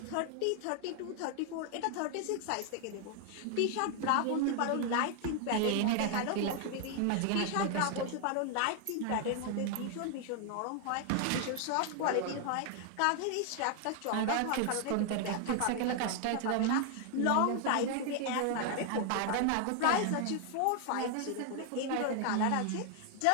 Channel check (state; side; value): different; both; correlation 0.00